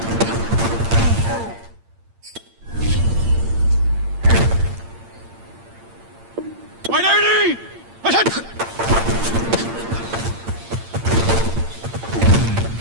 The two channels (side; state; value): left; late; 8.8 ms